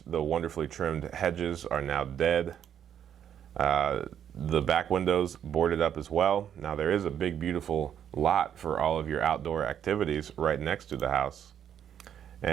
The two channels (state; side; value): quieter; left; 9.3 dB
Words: The wonderfully trimmed hedges are now dead. The back windows boarded up as well. Now there is a big, beautiful lot for all of your outdoor activities right next to the house.